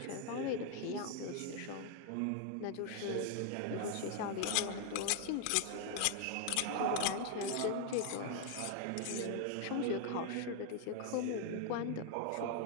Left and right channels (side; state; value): both; different; correlation 0.00